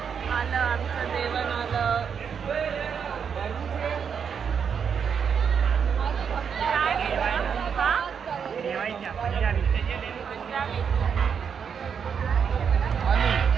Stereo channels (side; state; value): left; quieter; 7.0 dB